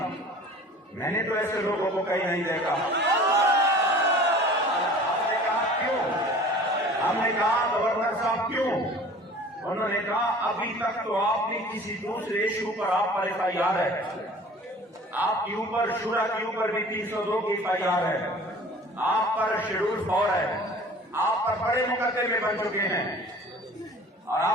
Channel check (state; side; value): normal; both; correlation 0.45